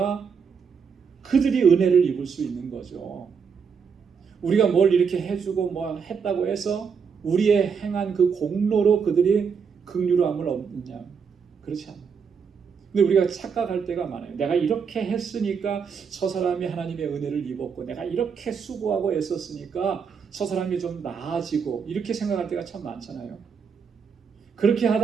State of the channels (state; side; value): quieter; left; 6.3 dB